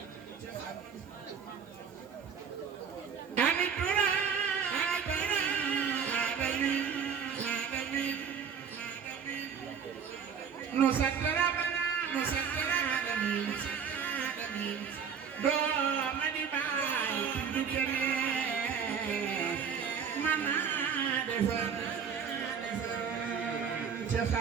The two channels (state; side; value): quieter; left; 6.9 dB